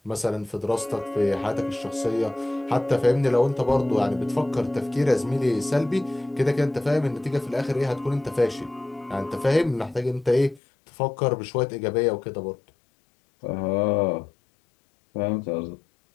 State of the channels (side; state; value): right; drops out; at 10.6 s